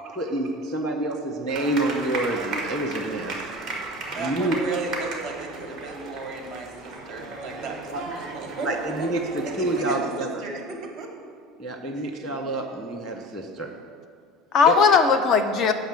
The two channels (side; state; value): both; normal; correlation 0.36